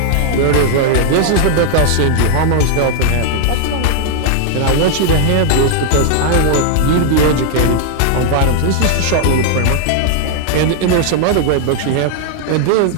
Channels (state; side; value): different; both; correlation -0.01